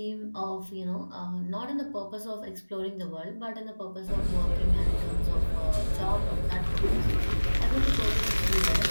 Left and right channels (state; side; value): inverted; both; correlation -1.00